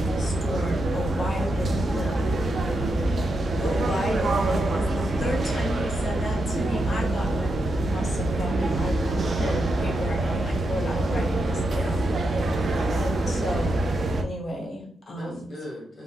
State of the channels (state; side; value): normal; both; correlation 0.85